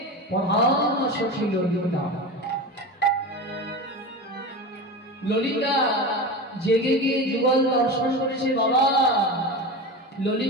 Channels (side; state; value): both; normal; correlation 0.26